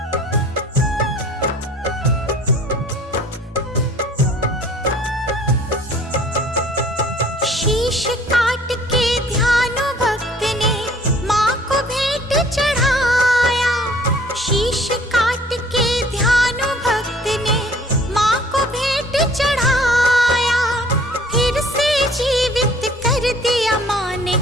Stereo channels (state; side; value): normal; both; correlation 0.54